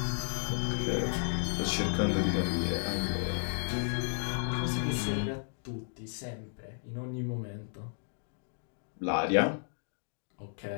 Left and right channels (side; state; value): right; silent; digital silence